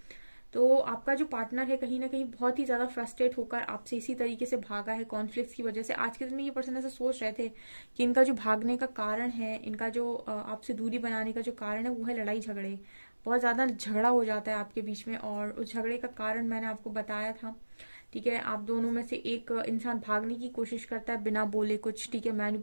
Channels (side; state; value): both; inverted; correlation -1.00